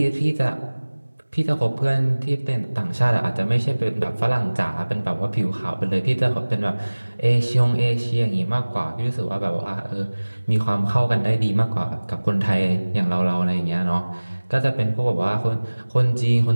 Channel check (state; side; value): inverted; both; correlation -1.00